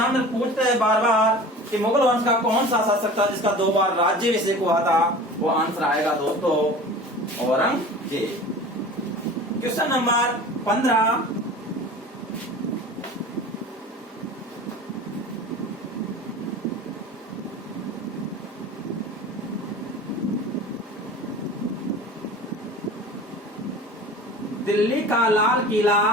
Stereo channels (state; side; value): normal; both; correlation 0.39